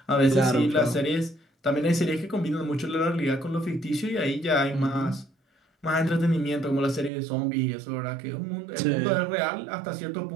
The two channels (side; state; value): left; drops out; at 7.1 s